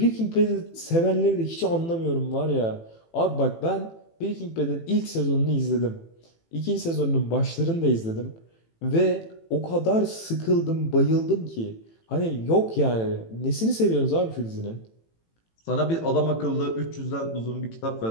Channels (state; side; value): late; right; 18 ms